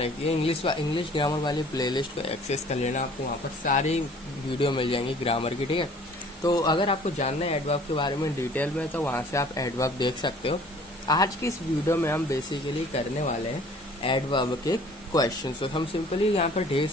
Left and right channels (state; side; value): normal; both; correlation 0.52